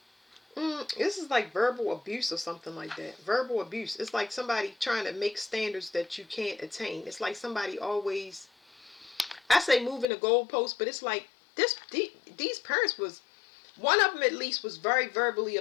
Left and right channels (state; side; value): drops out; right; at 10.1 s